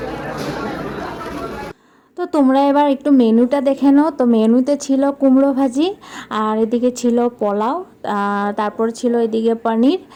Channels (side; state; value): both; identical; correlation 1.00